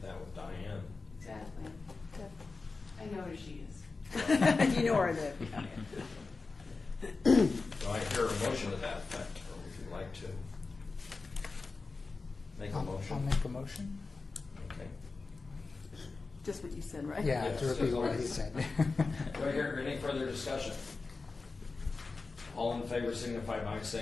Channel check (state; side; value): quieter; right; 4.0 dB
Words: that with Diane. Exactly. I know who she is. You know where I live. Do I hear a motion to that effect, or would you like to make a I'll motion? make a motion. Okay. Just what you said, right? Yeah, Yes. to repeat what he said. Do I hear any further discussion? All in favor signify by